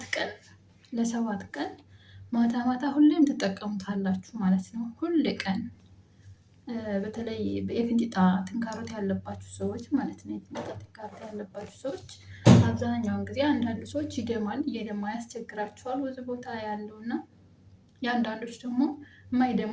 ለሰባት ቀን ማታ ማታ ሁሌም ትጠቀሙታላችሁ ማለት ነው። ሁል ቀን በተለይ የፊንጢጣ ትንካሮት ያለባችሁ ሰዎች ማለት ነው። የፊንጢጣ ትንካሮት ያለባችሁ ሰዎች አብዛኛውን ጊዜ አንዳንድ ሰዎች ይደማል፣ እየደማ ያስቸግራቸዋል ብዙ ቦታ ያለው እና የአንዳንዶች ደግሞ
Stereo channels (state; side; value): identical; both; correlation 1.00